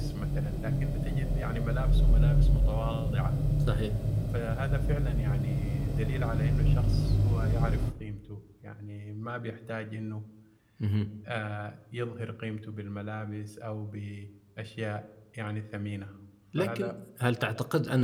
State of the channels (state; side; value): identical; both; correlation 1.00